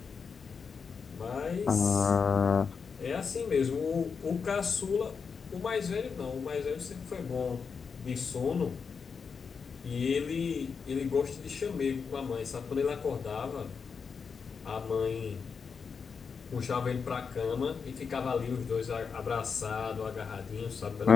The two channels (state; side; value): quieter; right; 5.7 dB